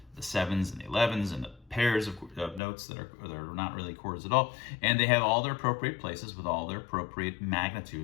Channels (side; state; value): right; drops out; at 2.6 s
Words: 7s and the 11s and the pairs of notes that are not really chords at all. And they have all their appropriate places with all their appropriate